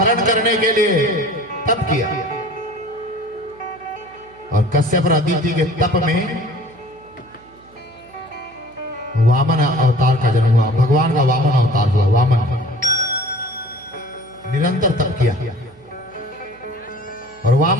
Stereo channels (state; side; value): noise; right; hum, 27 dB below the sound